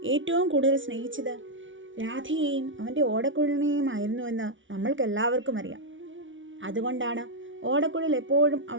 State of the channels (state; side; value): late; left; 0.56 ms